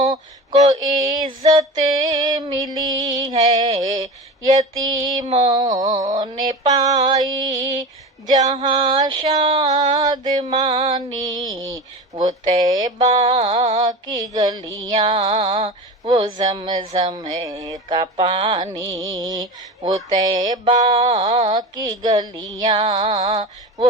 کو عزت ملی ہے، یتیموں نے پائی جہاں شادمانی۔ وہ طیبہ کی گلیاں، وہ زمزم کا پانی، وہ طیبہ کی گلیاں،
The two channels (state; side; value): normal; both; correlation 0.29